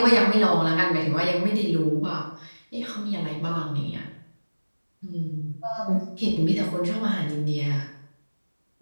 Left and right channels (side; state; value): both; inverted; correlation -1.00